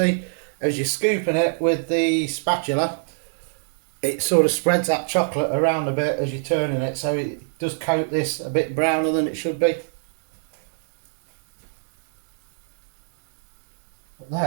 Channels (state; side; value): silent; left; digital silence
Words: as you're scooping it with the spatula, it sort of spreads that chocolate around a bit as you're turning it, so it does coat this a bit browner than it should be. But